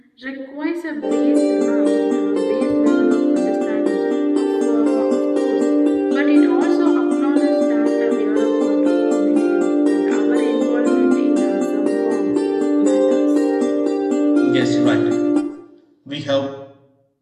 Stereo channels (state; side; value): identical; both; correlation 1.00